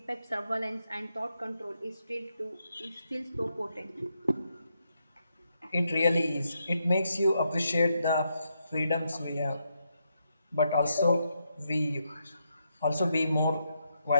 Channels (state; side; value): inverted; both; correlation -0.81